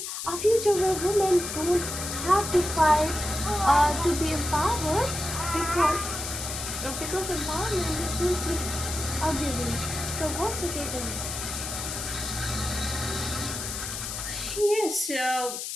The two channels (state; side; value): noise; left; hiss, 5 dB below the sound